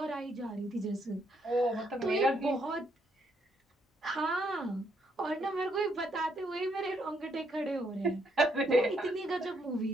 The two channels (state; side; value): normal; both; correlation 0.74